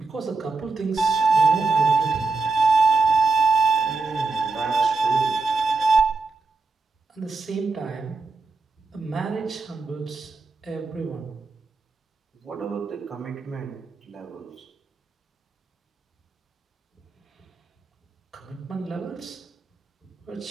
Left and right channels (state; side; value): quieter; left; 3.9 dB